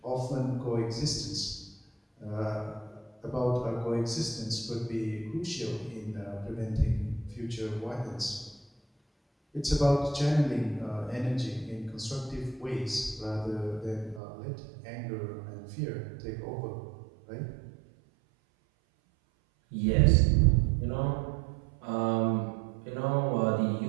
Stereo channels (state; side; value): drops out; left; at 14.2 s